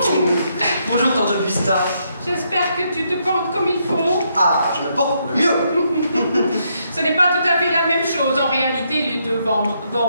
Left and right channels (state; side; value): inverted; both; correlation -0.76